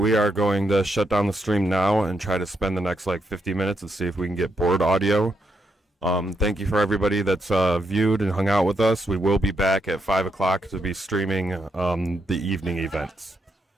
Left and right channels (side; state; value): both; normal; correlation 0.80